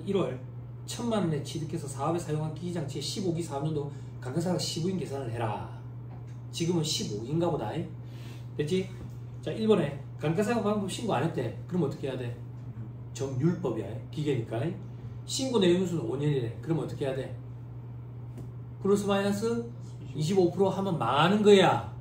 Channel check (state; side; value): identical; both; correlation 1.00